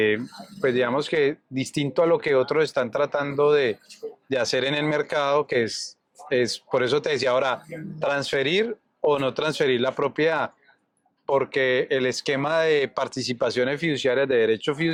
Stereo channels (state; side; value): identical; both; correlation 1.00